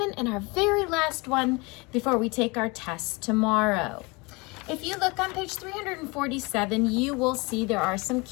and our very last one before we take our test tomorrow. If you look on page 347, you will see there are some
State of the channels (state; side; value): quieter; right; 26.5 dB